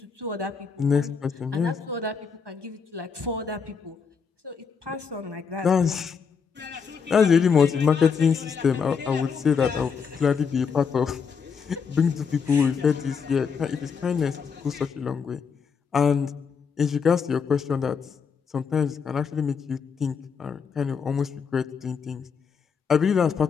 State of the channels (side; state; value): right; quieter; 6.0 dB